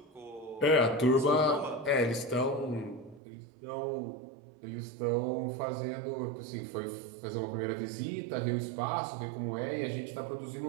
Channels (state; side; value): drops out; left; at 3.2 s